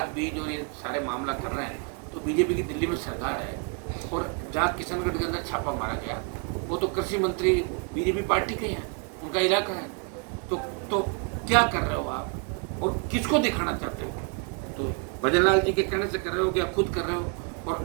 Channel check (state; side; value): quieter; left; 36.8 dB